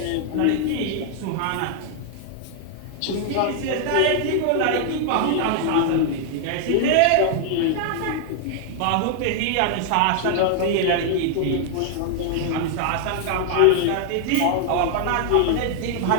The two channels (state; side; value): different; both; correlation 0.00